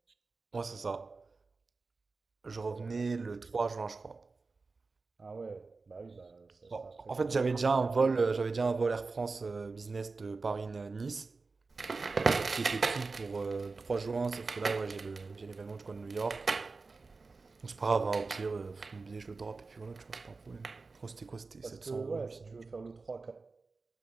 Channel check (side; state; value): left; quieter; 4.0 dB